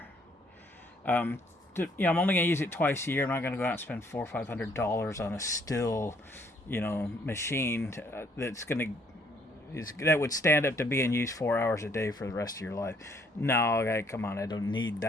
I'm only going to use it twice a year. I'm not going to go out and spend $400 or $500 on a still, machine that would stand up to being used 4 hours a day for the rest of your life. No, come on, I don't need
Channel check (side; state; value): both; normal; correlation 0.65